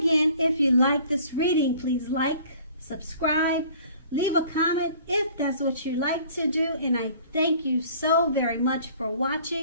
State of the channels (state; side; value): inverted; both; correlation -0.51